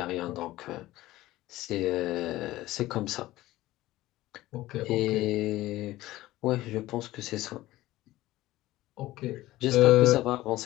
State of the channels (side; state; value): right; quieter; 16.7 dB